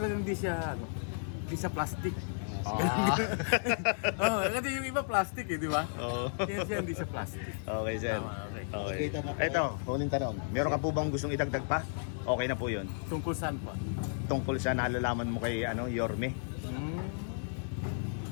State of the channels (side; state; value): right; silent; 56 dB below the other